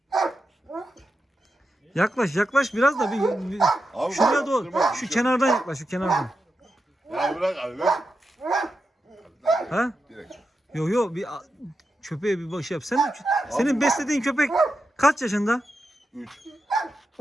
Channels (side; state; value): both; normal; correlation 0.88